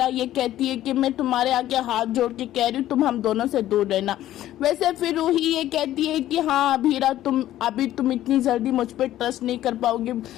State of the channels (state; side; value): quieter; right; 13.4 dB